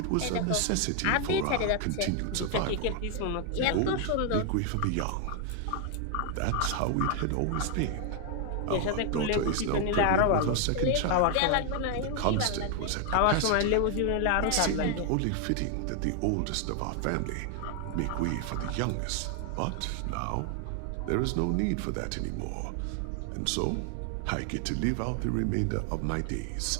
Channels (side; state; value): both; different; correlation 0.00